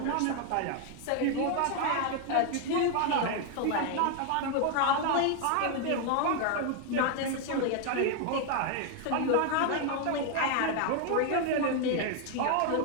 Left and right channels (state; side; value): different; both; correlation 0.01